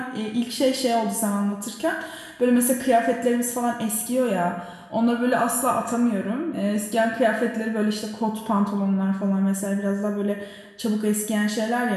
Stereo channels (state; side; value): identical; both; correlation 1.00